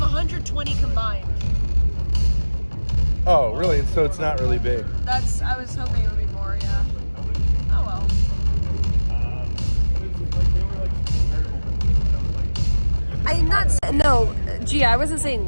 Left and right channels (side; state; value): both; inverted; correlation -1.00